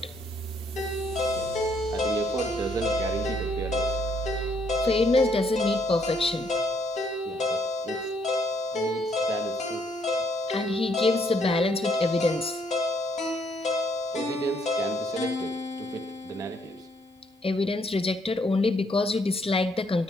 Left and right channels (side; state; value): both; normal; correlation 0.70